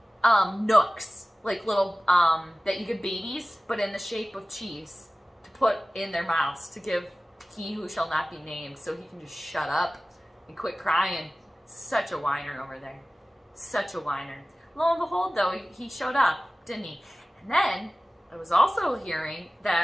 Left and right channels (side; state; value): both; normal; correlation 0.97